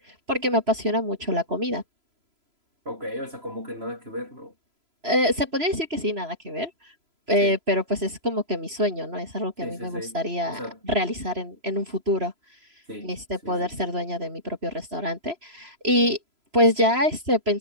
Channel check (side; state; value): left; late; 3.0 ms